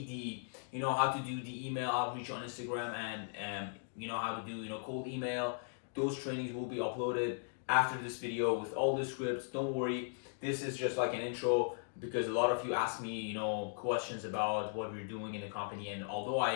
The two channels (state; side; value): silent; right; digital silence